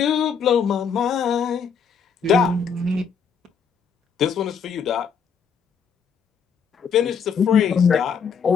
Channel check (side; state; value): right; quieter; 6.4 dB